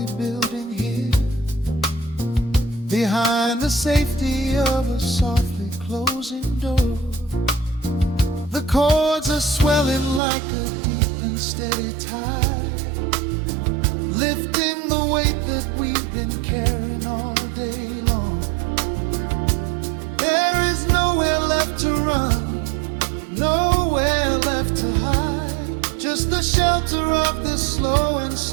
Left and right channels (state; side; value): drops out; left; at 10.2 s